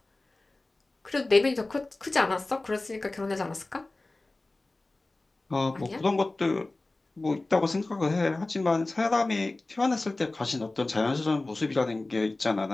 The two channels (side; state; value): right; quieter; 3.0 dB